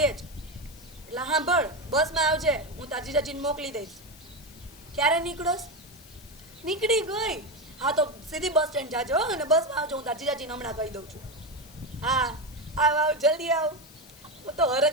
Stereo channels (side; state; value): left; noise; hiss, 21 dB below the sound